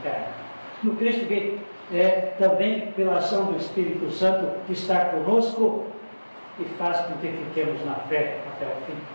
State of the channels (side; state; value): both; inverted; correlation -1.00